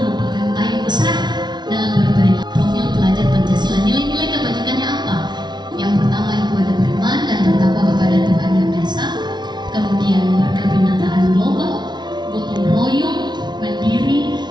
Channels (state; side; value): late; left; 0.20 ms